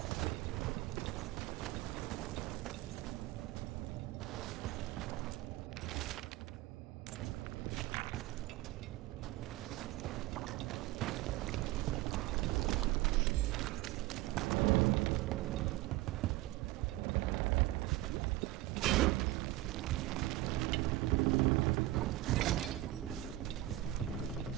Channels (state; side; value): quieter; left; 16.9 dB